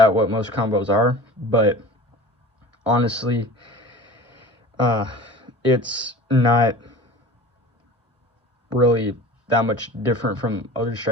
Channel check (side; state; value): both; normal; correlation 0.39